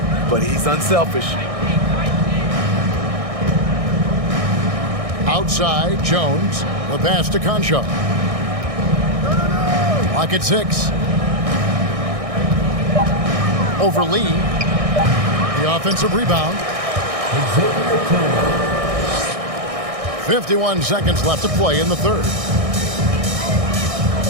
but he's unselfish. Outside, Jones. The pass to Concho. Lock at 6. Over Lee. The offensive rebound. 51 seconds left to play in the third.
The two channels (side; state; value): left; late; 1.6 ms